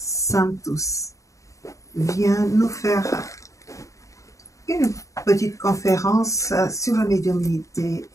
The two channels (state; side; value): late; right; 0.16 ms